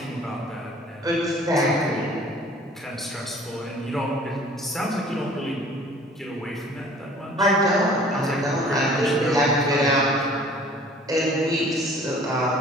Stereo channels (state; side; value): normal; both; correlation 0.51